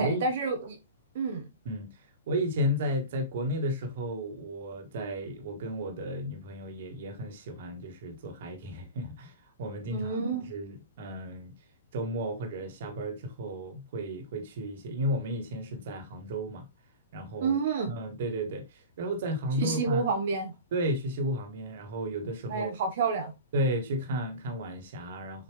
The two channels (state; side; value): inverted; both; correlation -0.31